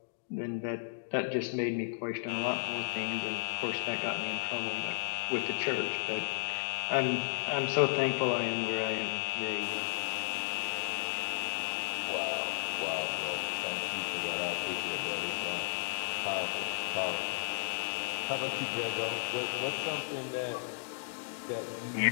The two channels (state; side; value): silent; right; digital silence